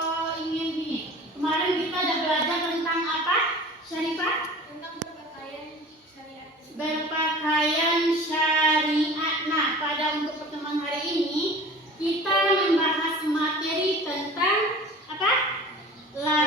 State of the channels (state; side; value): normal; both; correlation 0.41